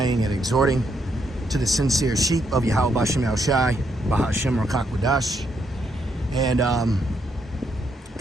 and exhorting to the sincere sheep of Yahwashimi Al-Shai, Bahashem Rakakwadash. And, I'm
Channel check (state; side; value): normal; both; correlation 0.77